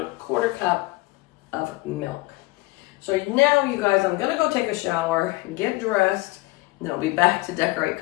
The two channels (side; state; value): right; quieter; 21.5 dB